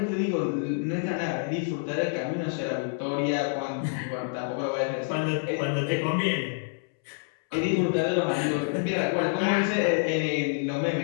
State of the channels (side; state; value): right; silent; 60 dB below the other